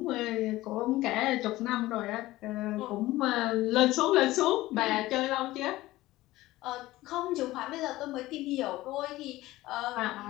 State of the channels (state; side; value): quieter; right; 17.4 dB